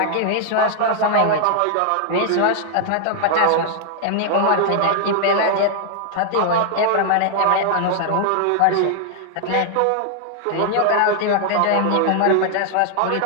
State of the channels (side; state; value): both; different; correlation 0.00